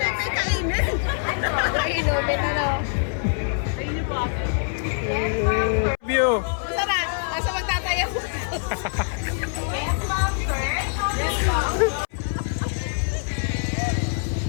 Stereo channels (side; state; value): right; silent; 62 dB below the other